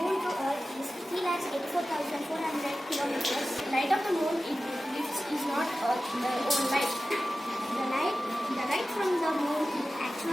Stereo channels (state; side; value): normal; both; correlation 0.95